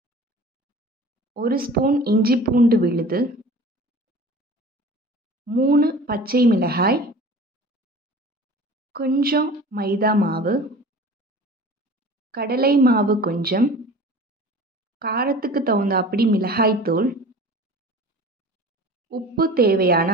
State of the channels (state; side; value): normal; both; correlation 0.41